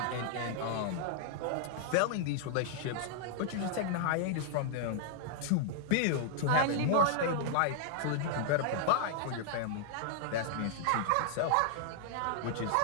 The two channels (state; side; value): different; both; correlation -0.01